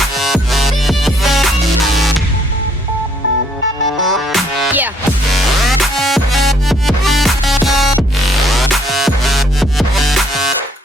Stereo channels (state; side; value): normal; both; correlation 0.66